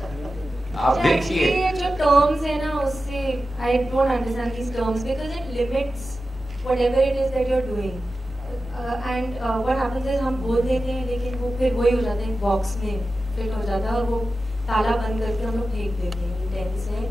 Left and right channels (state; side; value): normal; both; correlation 0.93